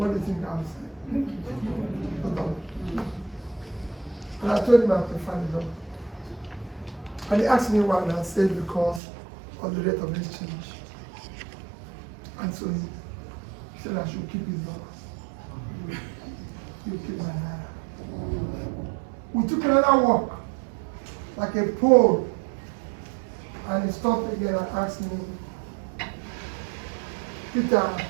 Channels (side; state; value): left; drops out; at 9.0 s